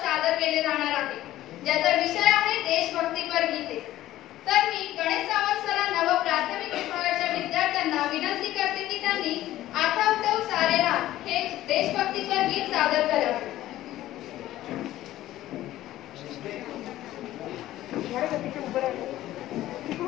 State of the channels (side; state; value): right; quieter; 14.6 dB